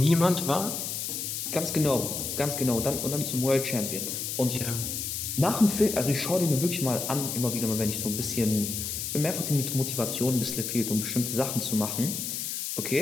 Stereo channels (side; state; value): left; noise; hiss, 4 dB below the sound